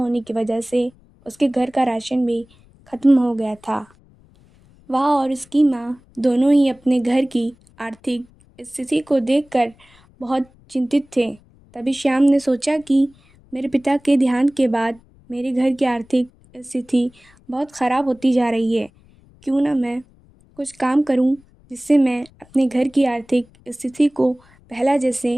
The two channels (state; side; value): noise; left; rumble, 29 dB below the sound